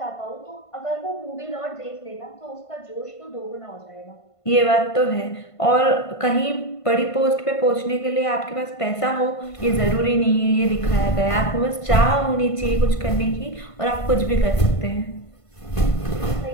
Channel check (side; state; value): right; late; 1.5 ms